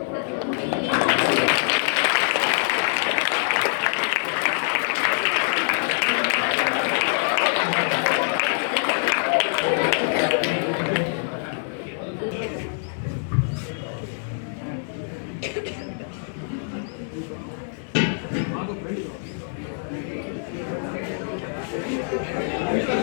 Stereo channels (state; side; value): silent; right; digital silence